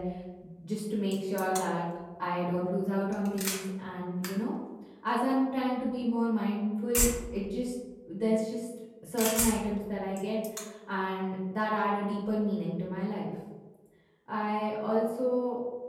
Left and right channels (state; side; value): identical; both; correlation 1.00